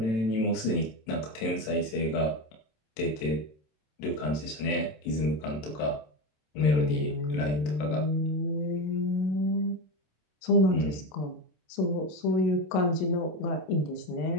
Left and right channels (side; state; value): right; late; 27 ms